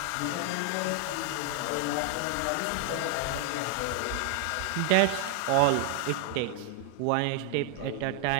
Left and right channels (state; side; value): different; both; correlation 0.00